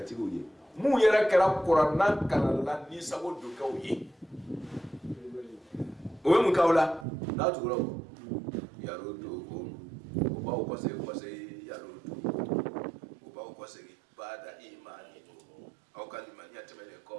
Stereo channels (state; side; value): drops out; left; at 7.1 s